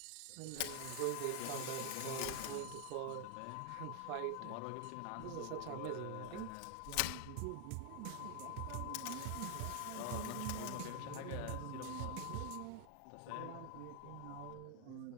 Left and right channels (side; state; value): both; different; correlation 0.00